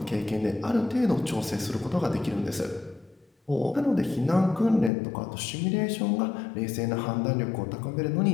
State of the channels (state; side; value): drops out; right; at 4.9 s